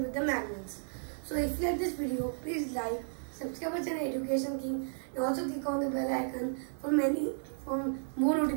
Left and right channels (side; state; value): left; silent; digital silence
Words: with the magnets. So if you like this video, please like, subscribe our channel Education King, and also click on the bell icon for more